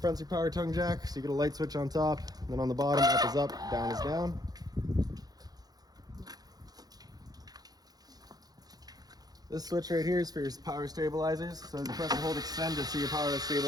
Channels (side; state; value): left; late; 0.19 ms